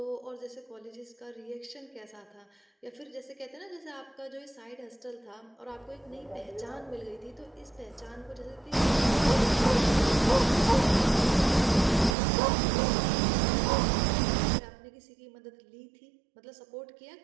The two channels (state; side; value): drops out; left; at 12.2 s